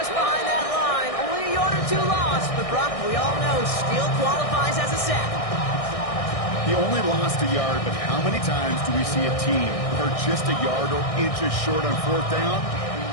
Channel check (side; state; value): right; late; 1.6 ms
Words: behind that line. Only a yard or two lost, but Brock, we all know, still qualifies as a sack. He only lost a yard, but how many times do we see a team are just a yard or inches short on fourth down?